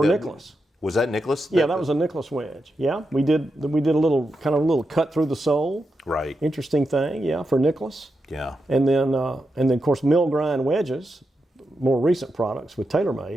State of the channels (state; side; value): normal; both; correlation 0.87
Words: Nicklaus. Was that Nicklaus? Yeah, that was a Nicklaus wedge. Yeah, we did a little cut through the sole. Right. Interesting thing. Yeah, for Nicklaus. Yeah. And then of course mill grind wedges, more recent products with TaylorMade